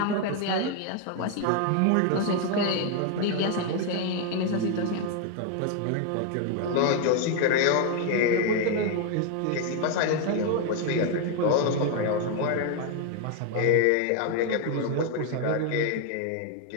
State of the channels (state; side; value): different; both; correlation 0.01